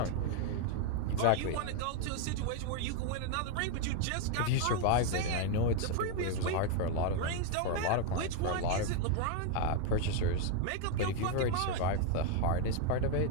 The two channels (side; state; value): both; different; correlation 0.01